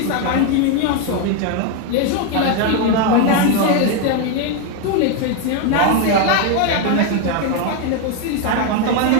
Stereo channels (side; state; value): both; different; correlation 0.02